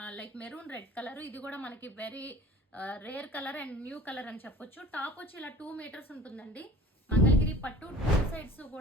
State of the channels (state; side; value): normal; both; correlation 0.44